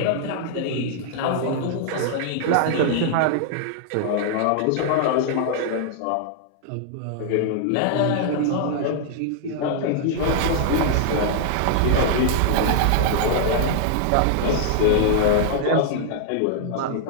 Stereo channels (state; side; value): different; both; correlation -0.01